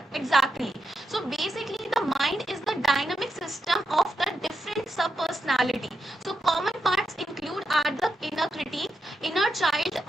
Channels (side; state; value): both; normal; correlation 0.86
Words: exactly? So basically the mind is the dynamic system of the different sub-personality. So common parts include are the inner critique, inner child,